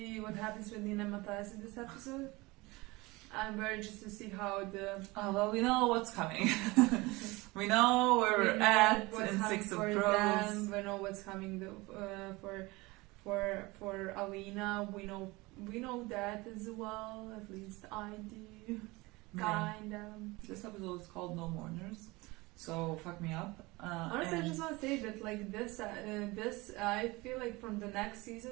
what happens with Nina and Matthias in this episode. I'm very interested to see how the... Well, we know what's coming. We know where we're at in Six of Crows. We know what's coming for Alina. We know that as well. At least I do. Kind of. This episode is called No Mourners, so fuck me up. Honestly, I just want to say that like this, I feel like from the next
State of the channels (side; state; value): left; quieter; 22.7 dB